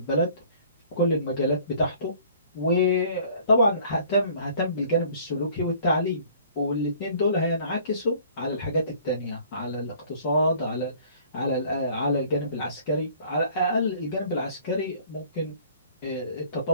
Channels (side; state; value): both; inverted; correlation -0.53